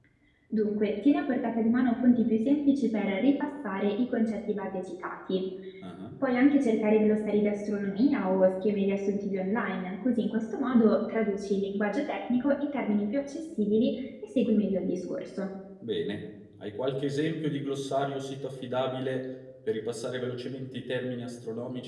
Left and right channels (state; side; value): identical; both; correlation 1.00